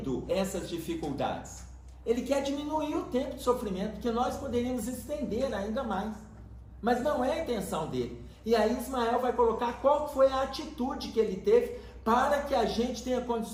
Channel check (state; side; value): identical; both; correlation 1.00